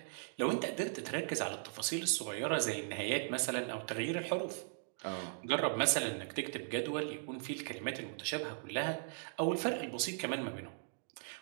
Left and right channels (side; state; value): left; silent; digital silence